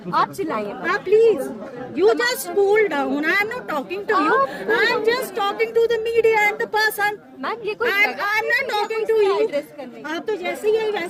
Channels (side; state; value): both; identical; correlation 1.00